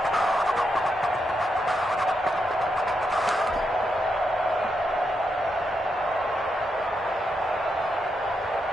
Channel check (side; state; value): both; normal; correlation 0.83